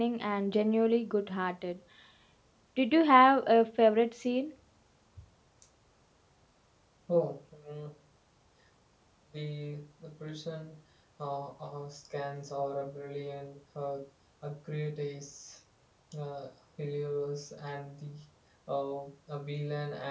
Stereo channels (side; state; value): both; identical; correlation 1.00